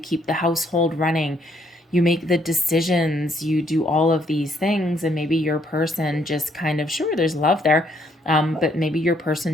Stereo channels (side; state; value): both; normal; correlation 0.69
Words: household running, you make the decisions, you do all of these things, and maybe your person just kind of, sure, there's love there, but maybe your